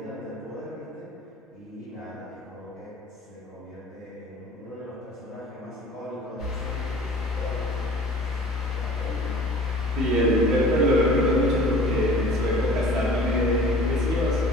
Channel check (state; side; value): normal; both; correlation 0.45